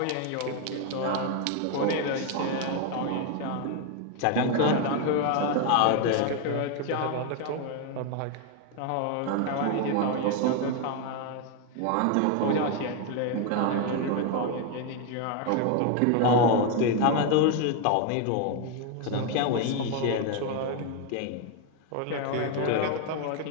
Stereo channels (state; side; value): different; both; correlation 0.01